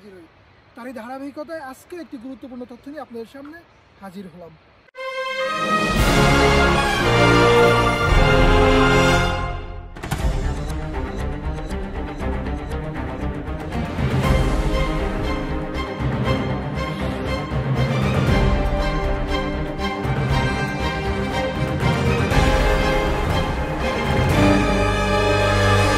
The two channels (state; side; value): identical; both; correlation 1.00